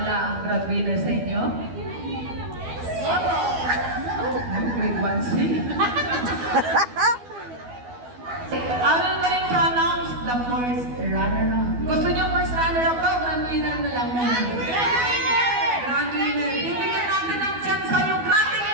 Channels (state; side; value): late; left; 12 ms